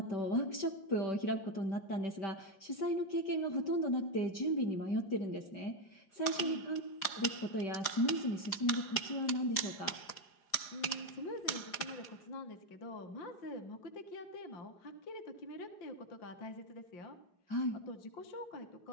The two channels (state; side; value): late; right; 4.9 ms